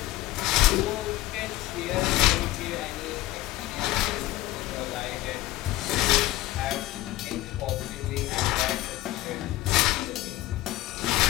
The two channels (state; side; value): quieter; right; 16.8 dB